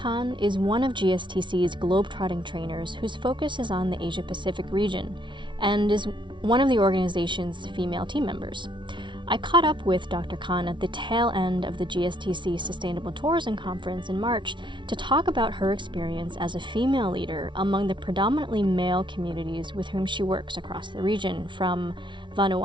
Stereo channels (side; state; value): left; late; 0.24 ms